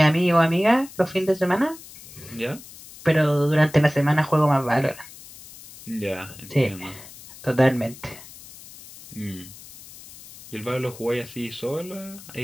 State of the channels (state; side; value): noise; left; hiss, 18 dB below the sound